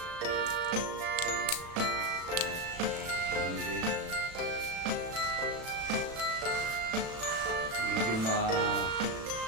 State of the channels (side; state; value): left; late; 36 ms